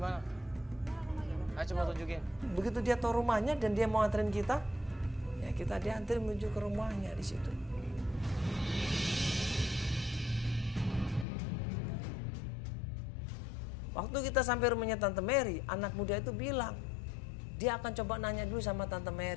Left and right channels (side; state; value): right; drops out; at 11.2 s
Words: Ayo coba tunjukin. Begitu dia tahu rumahnya dan dia mau anterin kita, ya kita dianterin menuju ke rumahnya di situ. Waktu kita sampai rumahnya Tante Mary, anak muda itu bilang, dia akan coba nanya dulu sama Tante